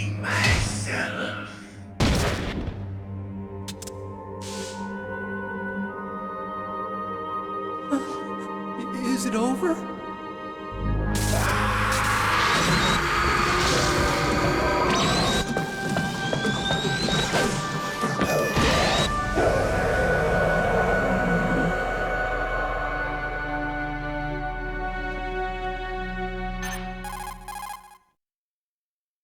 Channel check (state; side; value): identical; both; correlation 1.00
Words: myself. Is it over?